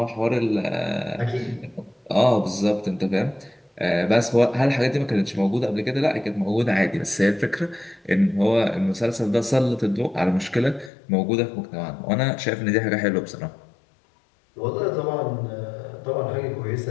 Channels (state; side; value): drops out; right; at 10.9 s